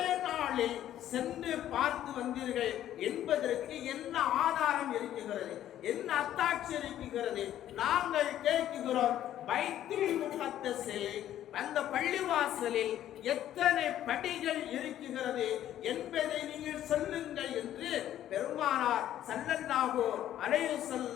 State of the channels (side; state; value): right; quieter; 11.9 dB